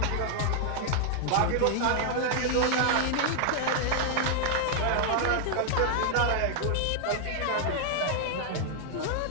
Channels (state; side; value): different; both; correlation 0.00